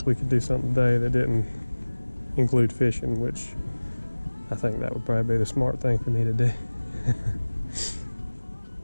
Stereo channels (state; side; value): inverted; both; correlation -1.00